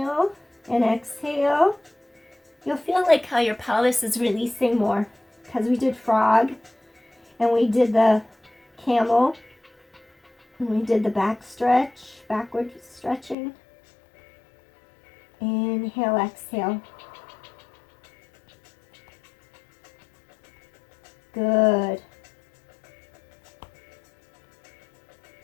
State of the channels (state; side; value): drops out; right; at 13.4 s